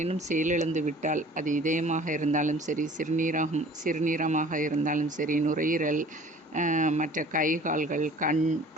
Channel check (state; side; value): normal; both; correlation 0.48